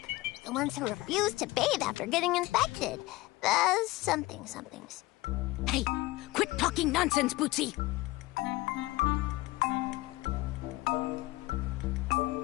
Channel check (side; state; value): right; quieter; 19.8 dB